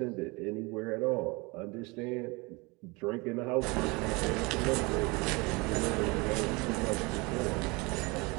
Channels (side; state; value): left; quieter; 26.3 dB